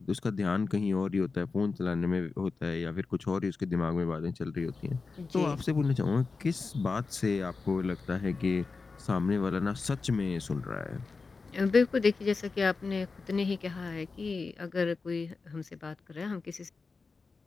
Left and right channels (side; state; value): right; quieter; 4.3 dB